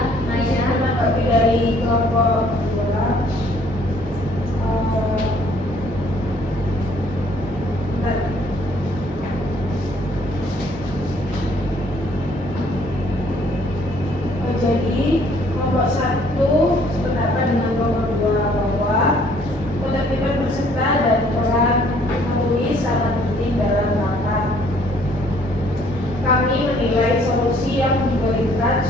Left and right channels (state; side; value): normal; both; correlation 0.61